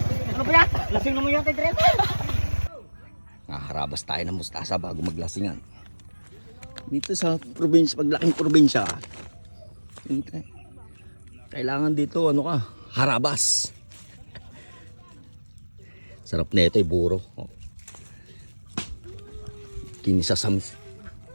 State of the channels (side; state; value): both; inverted; correlation -1.00